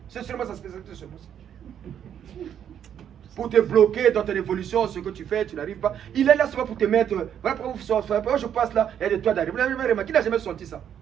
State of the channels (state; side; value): quieter; left; 9.3 dB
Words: C'est seulement sa spécialité, seulement ça. Pour te bloquer dans ton évolution, ce que tu fais, tu n'arrives pas. Il est là seulement pour te mettre. Voilà pourquoi vous sortez. Je passe là, il y a des toits d'araignée. Vous n'avez jamais remarqué? Qui n'a jamais senti ça?